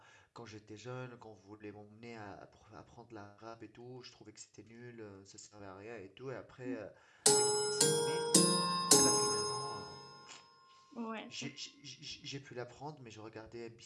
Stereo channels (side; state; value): both; identical; correlation 1.00